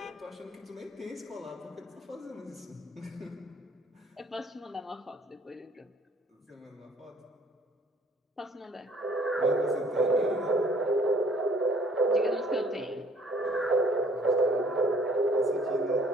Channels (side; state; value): both; normal; correlation 0.58